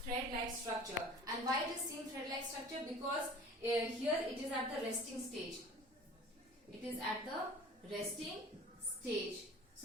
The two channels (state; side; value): normal; both; correlation 0.43